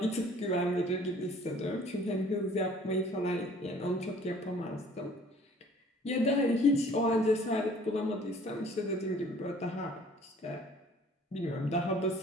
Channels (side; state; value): both; normal; correlation 0.53